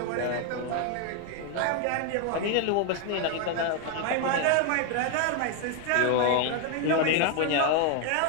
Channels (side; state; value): both; different; correlation 0.01